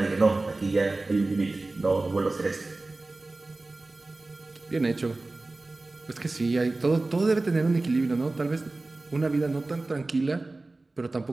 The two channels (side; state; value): left; quieter; 3.1 dB